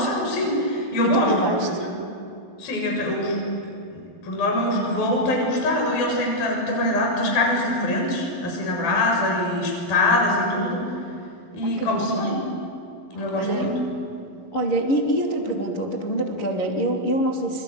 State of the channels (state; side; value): late; right; 12 ms